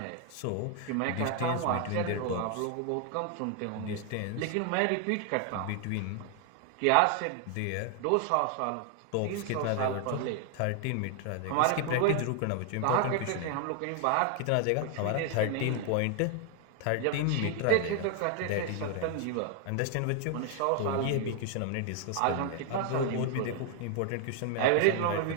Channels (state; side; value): different; both; correlation 0.00